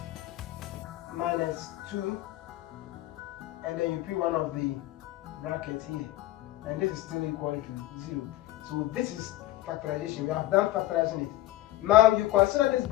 minus 2, and then you put one of the brackets here, and this is still equal to 0. So this is factorization. We have done factorizing it. Now you consider this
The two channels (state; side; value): quieter; right; 15.8 dB